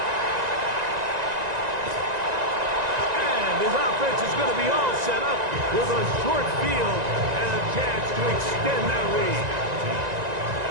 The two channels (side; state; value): left; late; 1.9 ms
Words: And his offense is going to be all set up with a short field and a chance to extend that lead.